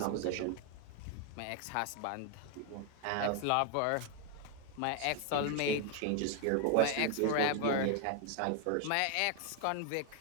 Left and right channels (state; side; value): different; both; correlation 0.01